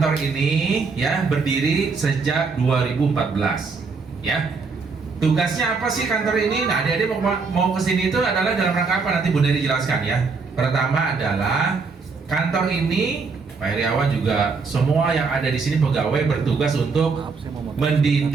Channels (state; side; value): quieter; left; 4.7 dB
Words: ini ya berdiri sejak 2014 ya. Tugasnya apa sih kantor ini? Nah, adik-adik mau ke sini itu adalah dalam rangka apa? Nanti Bu Neri jelaskan ya. Pertama adalah kantor ini Pak Heriawan juga semua yang ada di sini pegawai bertugas untuk